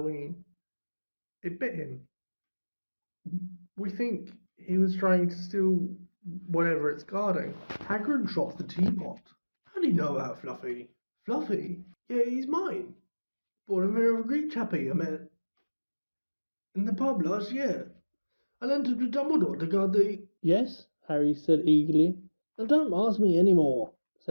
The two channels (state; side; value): inverted; both; correlation -1.00